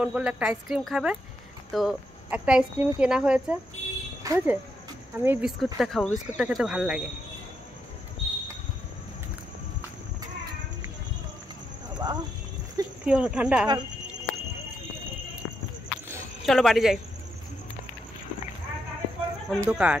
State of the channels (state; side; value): normal; both; correlation 0.81